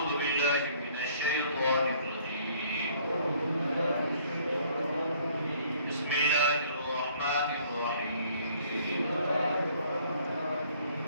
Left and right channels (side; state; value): both; inverted; correlation -0.59